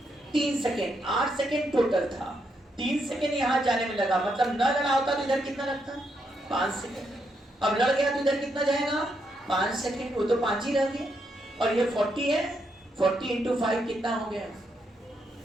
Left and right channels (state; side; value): normal; both; correlation 0.79